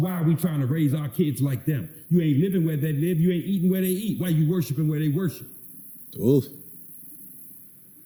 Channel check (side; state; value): both; identical; correlation 1.00